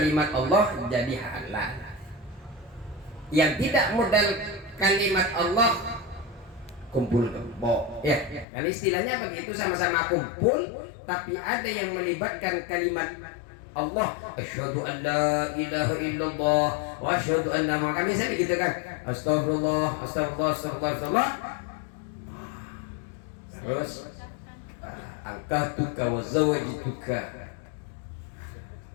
Allah jadi halal. Yang tidak modal kalimat Allah kumpul kebo, ya kan istilahnya begitu, sama-sama kumpul tapi ada yang melibatkan kalimat Allah. Asyhadu an la ilaha illallah wa asyhadu anna Muhammadan, biasa begitu kan, astagfirullah astagfirullah astagfirullah, terus angkatuka wa zawajituka,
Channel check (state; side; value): drops out; right; at 8.5 s